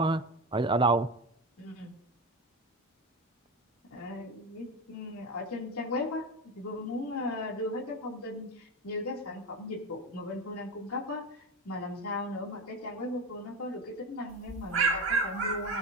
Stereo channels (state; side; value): normal; both; correlation 0.22